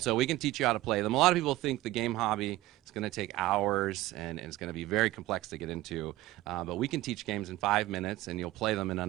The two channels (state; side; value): quieter; left; 16.9 dB